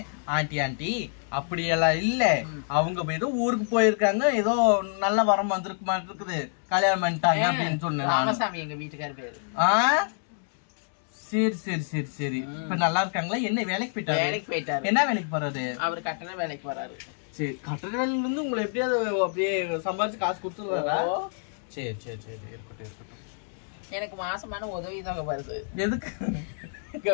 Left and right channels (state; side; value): silent; right; digital silence